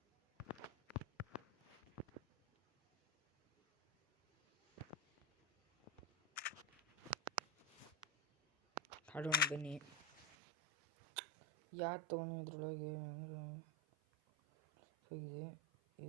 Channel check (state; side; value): drops out; left; at 10.2 s